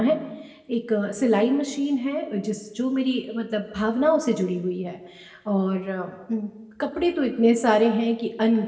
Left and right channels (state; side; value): identical; both; correlation 1.00